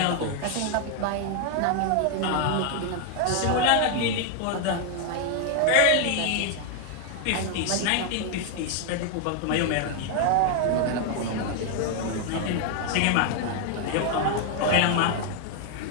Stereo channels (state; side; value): different; both; correlation 0.00